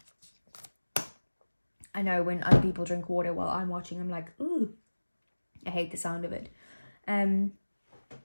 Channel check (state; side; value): inverted; both; correlation -1.00